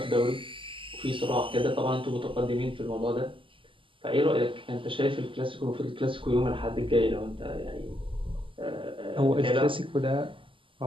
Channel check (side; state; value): left; late; 0.25 ms